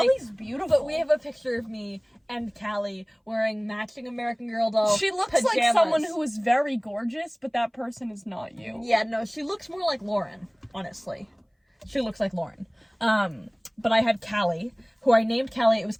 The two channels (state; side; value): identical; both; correlation 1.00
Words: beautiful. But we have a picture of me and Callie wearing matching American Girl doll She looks pajamas. like someone who is very gorgeous, but that person is not you. Yeah, no, she looks more like Lauren, honestly. She looks like Lauren. But I had Callie, who I named Callie. It was